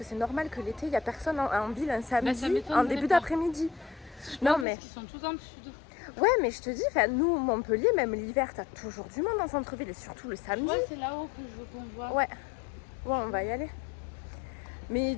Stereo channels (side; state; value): right; drops out; at 4.7 s